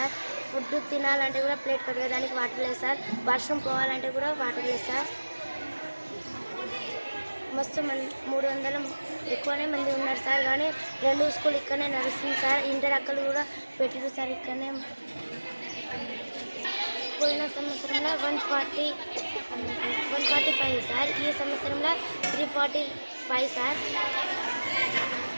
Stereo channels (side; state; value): both; inverted; correlation -1.00